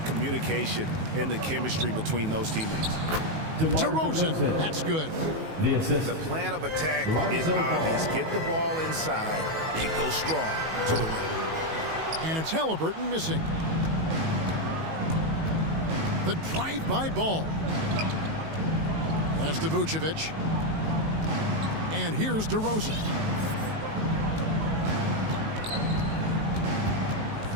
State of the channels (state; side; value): late; left; 19 ms